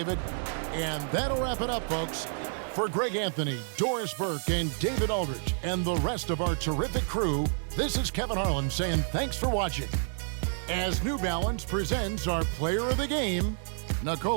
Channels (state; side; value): silent; left; digital silence